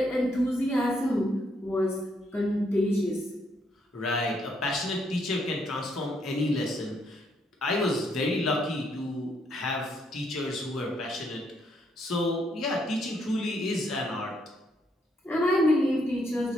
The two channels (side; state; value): both; normal; correlation 0.73